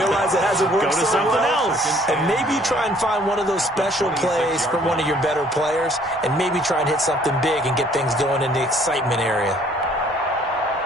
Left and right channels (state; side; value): normal; both; correlation 0.59